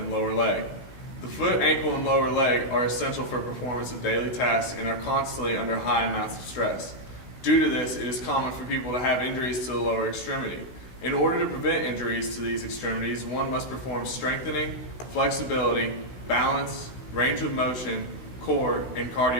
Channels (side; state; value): right; late; 16 ms